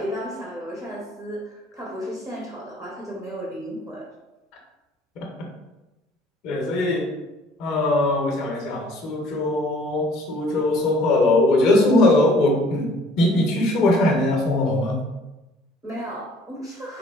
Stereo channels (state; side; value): normal; both; correlation 0.56